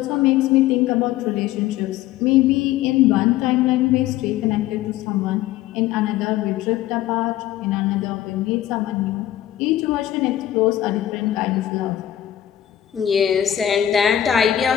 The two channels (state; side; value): quieter; right; 12.3 dB